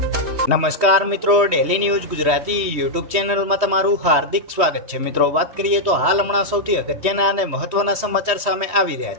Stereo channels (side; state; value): left; late; 3.2 ms